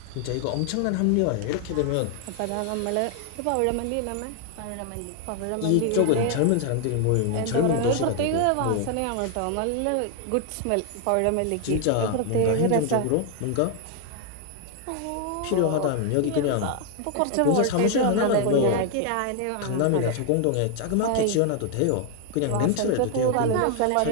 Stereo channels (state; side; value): different; both; correlation 0.00